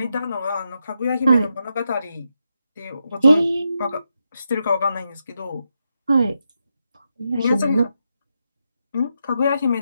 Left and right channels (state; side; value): inverted; both; correlation -0.85